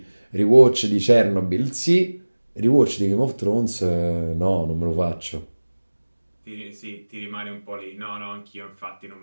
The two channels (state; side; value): inverted; both; correlation -1.00